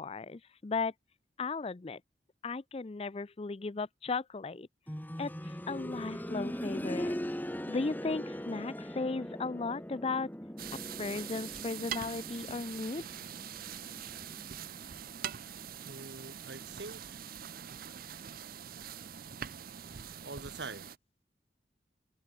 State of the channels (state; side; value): normal; both; correlation 0.42